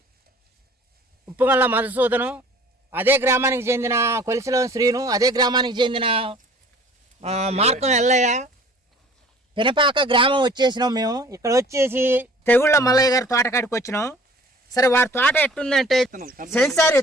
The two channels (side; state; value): both; normal; correlation 0.50